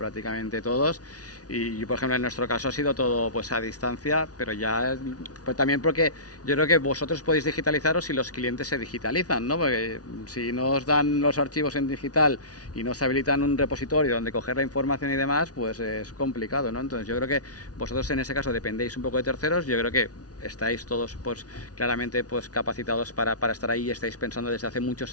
todos. Y por ejemplo en nuestro caso ha sido todo pues a distancia, pero ya pues también porque yo creo que vosotros podéis digitalizaros si los clientes se digitalizan, ¿no? Porque si no os dan los archivos en digital y no os habilitan un repositorio donde coger la información y demás, pues es complicado, ¿no? Entonces yo creo que vosotros en ese caso dependéis un poco de terceros. Yo creo que estáis todos pues claramente pues capacitados para estar ahí, y estáis pensando desde hace muchos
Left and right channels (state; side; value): late; right; 0.68 ms